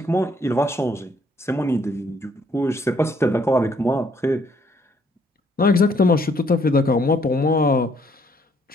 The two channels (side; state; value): both; normal; correlation 0.67